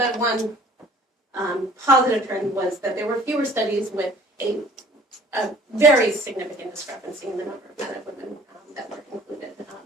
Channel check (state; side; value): normal; both; correlation 0.52